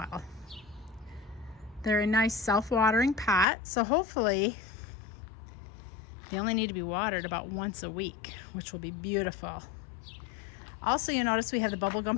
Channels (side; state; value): right; drops out; at 3.5 s